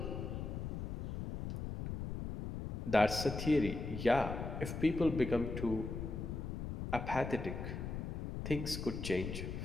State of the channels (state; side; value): noise; left; rumble, 4 dB below the sound